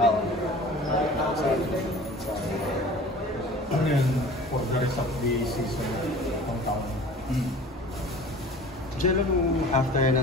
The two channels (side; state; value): both; normal; correlation 0.43